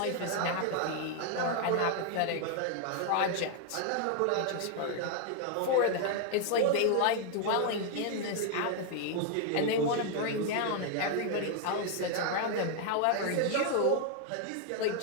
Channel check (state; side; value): different; both; correlation 0.00